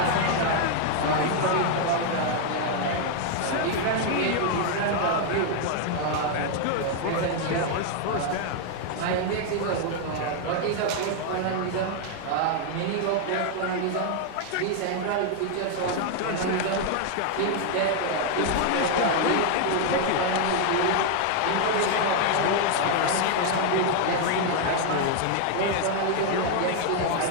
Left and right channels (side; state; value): both; different; correlation 0.00